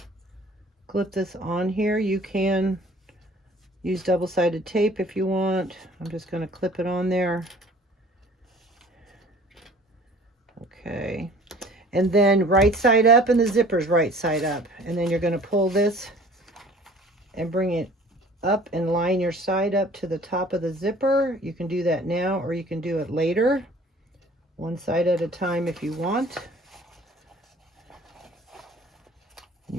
clip this on here. You can use double-sided tape if you want. I'm just going to clip it on there. Okay. And then right side up, and the zipper's right side up. And then you're going to pull this and bring it up and line your side up to the top of the zipper. You can do that now, or you can do it later. One side at a time if you want. You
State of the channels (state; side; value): normal; both; correlation 0.50